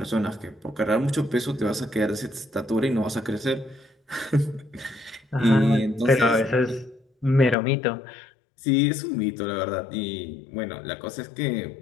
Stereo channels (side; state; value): right; drops out; at 7.6 s